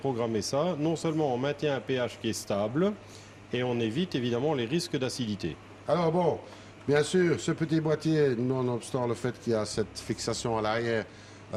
ça, non seulement on maintient un pH qui est stable, et on évite évidemment les risques d'acidité. Alors bon, bien sûr, ce petit boîtier, nonobstant le fait qu'il y a cette fixation à l'arrière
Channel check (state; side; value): identical; both; correlation 1.00